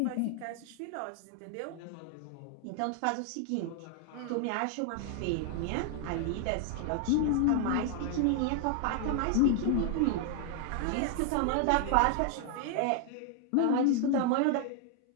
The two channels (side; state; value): both; different; correlation 0.00